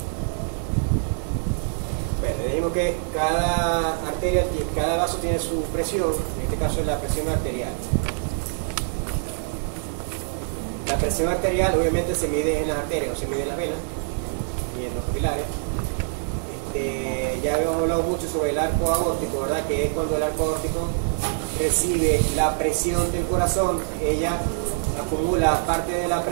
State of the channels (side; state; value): left; silent; digital silence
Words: Bueno, dijimos que cada arteria, cada vaso tiene su presión. En este caso es la presión arterial. La presión arterial obviamente se mide en las arterias, no se mide en las venas ni en los capilares. Ya hemos hablado mucho sobre el arco aórtico, ¿verdad? Que es cuando el arco aórtico recibe la presión del corazón, ella acumula parte de la